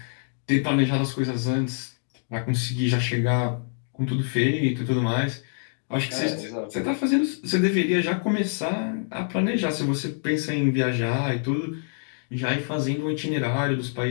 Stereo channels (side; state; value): right; silent; digital silence